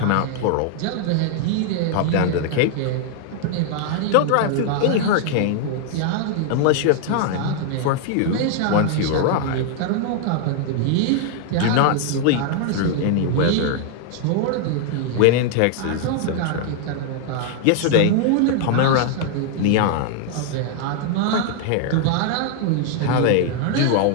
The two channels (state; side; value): different; both; correlation 0.00